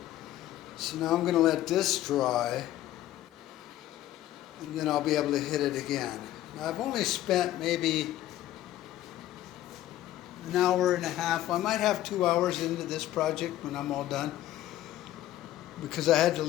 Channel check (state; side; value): quieter; right; 13.9 dB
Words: So now I'm going to let this dry, and then I'll be able to hit it again. Now I've only spent maybe an hour and a half. I might have 2 hours into this project when I'm all done, because I had to